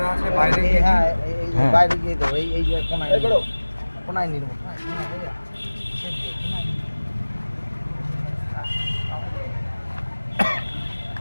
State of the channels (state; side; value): inverted; both; correlation -1.00